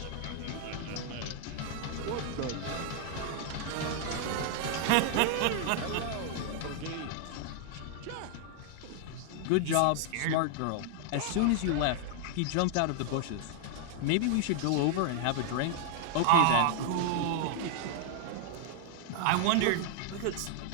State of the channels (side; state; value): both; different; correlation 0.00